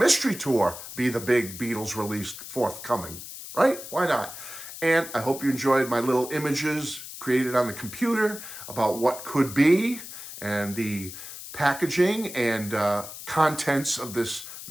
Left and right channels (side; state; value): left; noise; hiss, 12 dB below the sound